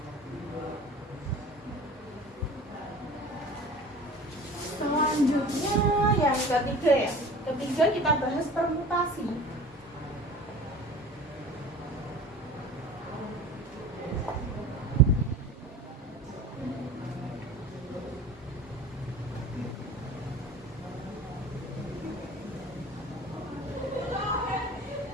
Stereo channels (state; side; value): normal; both; correlation 0.40